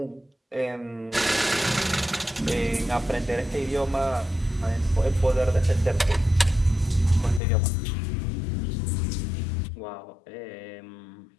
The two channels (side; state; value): right; drops out; at 7.4 s